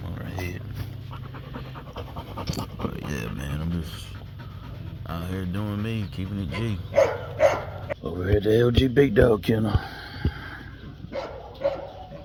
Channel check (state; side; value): identical; both; correlation 1.00